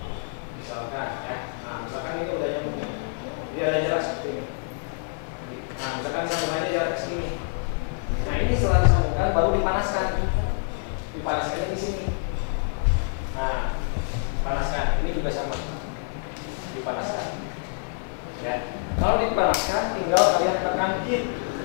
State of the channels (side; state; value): right; silent; 61 dB below the other